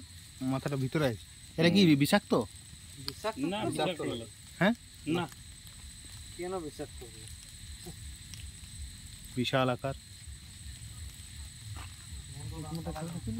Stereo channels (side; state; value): both; identical; correlation 1.00